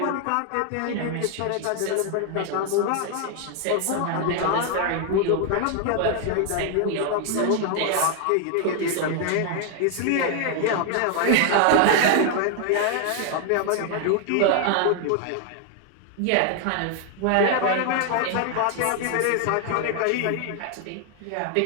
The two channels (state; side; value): different; both; correlation 0.00